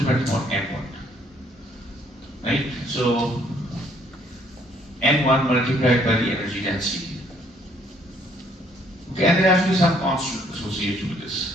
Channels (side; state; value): both; normal; correlation 0.65